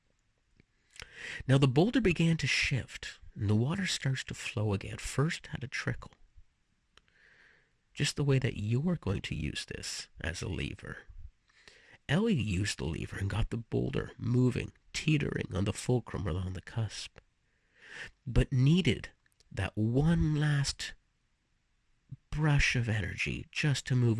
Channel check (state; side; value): identical; both; correlation 1.00